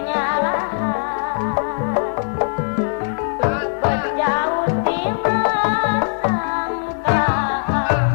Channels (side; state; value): right; silent; 59 dB below the other